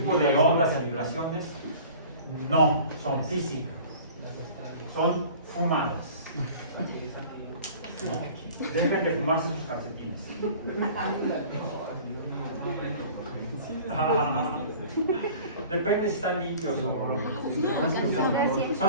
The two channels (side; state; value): both; inverted; correlation -0.44